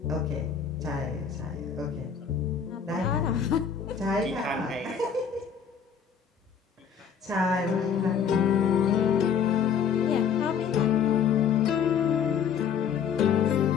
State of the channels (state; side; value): quieter; right; 7.2 dB